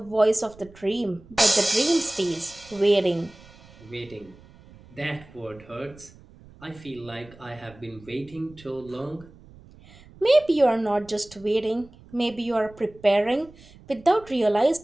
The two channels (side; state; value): right; noise; rumble, 23 dB below the sound